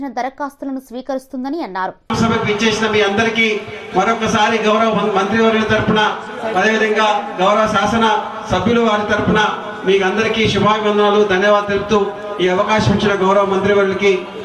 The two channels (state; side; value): identical; both; correlation 1.00